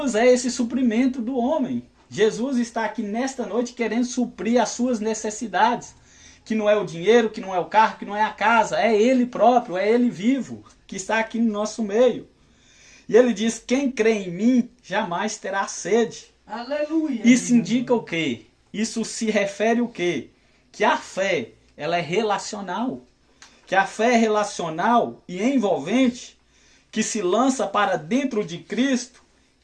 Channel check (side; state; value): both; identical; correlation 1.00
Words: é esse suprimento do homem. Jesus está aqui nesta noite querendo suprir as suas necessidades. Que não é o dinheiro, que não é o carro, que não é a casa. É Ele próprio, é Ele vivo, que está aqui no nosso meio. E ele diz, quem crê em mim jamais terá sede. Aleluia. Isso indica o quê? Isso se refere o quê? Que a fé, ela é relacional. Que a fé é relacional e envolvente, que se lança para dentro de Cristo,